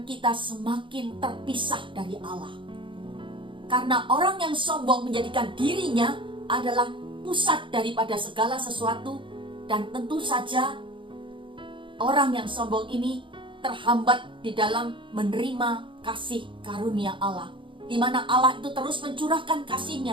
kita semakin terpisah dari Allah. Karena orang yang sombong menjadikan dirinya adalah pusat daripada segala sesuatu, dan tentu saja orang yang sombong ini terhambat di dalam menerima kasih karunia Allah, di mana Allah itu terus mencurahkan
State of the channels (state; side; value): late; left; 0.24 ms